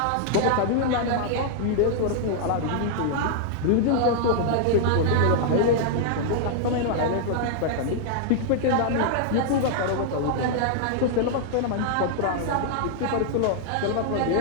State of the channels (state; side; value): different; both; correlation -0.01